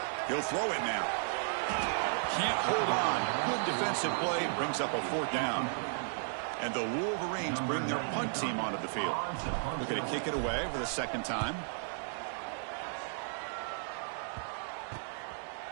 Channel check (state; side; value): silent; left; digital silence